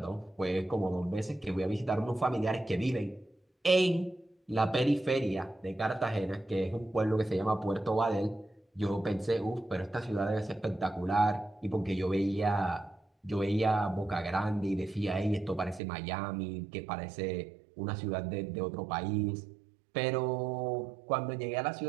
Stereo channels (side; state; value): left; drops out; at 15.8 s